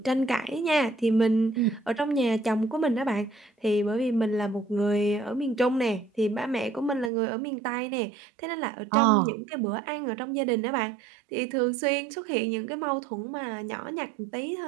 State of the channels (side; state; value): left; drops out; at 7.1 s